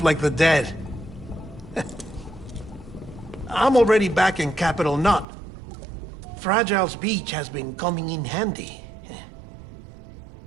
like the dead. I'm already back in Capital Knot. Fragile's beach has been coming in handy.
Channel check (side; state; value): left; drops out; at 5.2 s